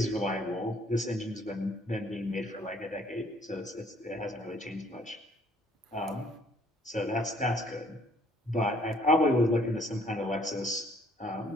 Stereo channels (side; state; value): both; normal; correlation 0.62